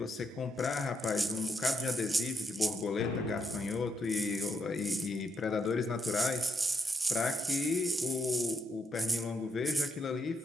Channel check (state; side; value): normal; both; correlation 0.79